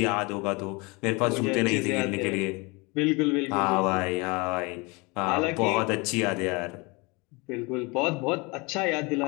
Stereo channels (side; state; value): right; quieter; 27.2 dB